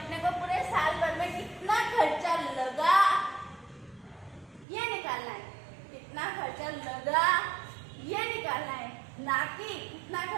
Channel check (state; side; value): drops out; left; at 4.7 s